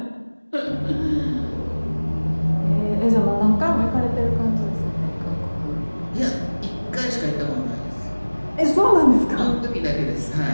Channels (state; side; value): inverted; both; correlation -1.00